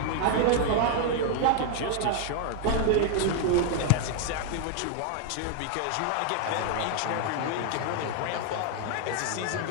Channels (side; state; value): both; different; correlation 0.00